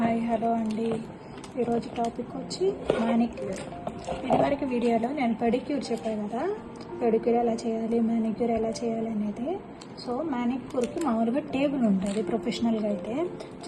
hello అండి. ఈరోజు topic వచ్చి మానిక్యూర్. ఇదివరకు వీడియోలో నేను పెడిక్యూర్ చెప్పాను కదా, పెడిక్యూర్ ఎలా చేయాలి, మానిక్యూర్ ఎలా చేయాలి అనేది. సో మానిక్యూర్కి మామూలుగా టేబుల్ ఉంటుంది ప్రొఫెషనల్గా అయితే.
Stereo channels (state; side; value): identical; both; correlation 1.00